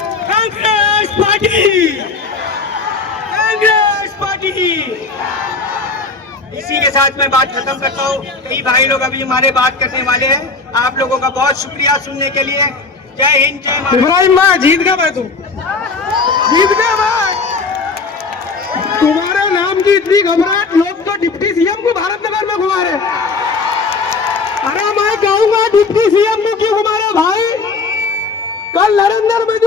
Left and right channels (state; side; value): quieter; right; 4.2 dB